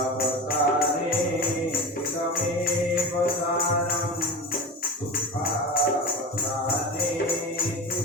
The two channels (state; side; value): normal; both; correlation 0.27